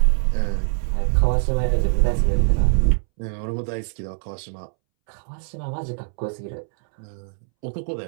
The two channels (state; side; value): silent; left; 64 dB below the other